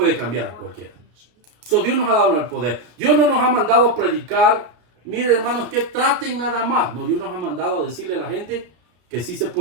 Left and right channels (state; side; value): late; left; 33 ms